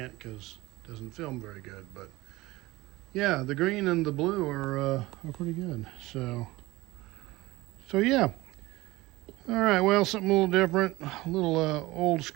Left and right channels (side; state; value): left; quieter; 19.9 dB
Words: because it doesn't film very good. But yeah, the green and the blue are pretty good. So yeah. All right, well, something a little different, a little old